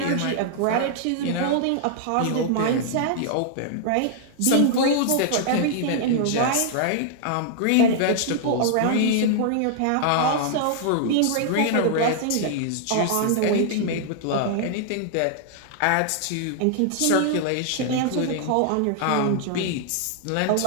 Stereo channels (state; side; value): different; both; correlation -0.01